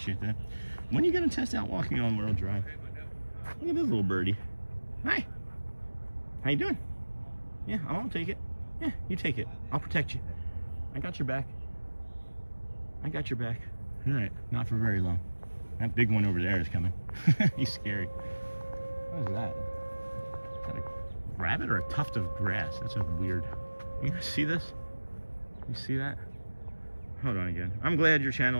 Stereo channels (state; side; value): inverted; both; correlation -1.00